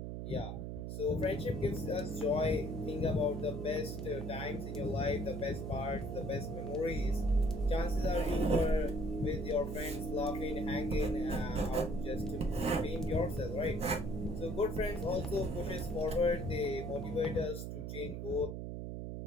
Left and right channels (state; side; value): noise; right; hum, 5 dB below the sound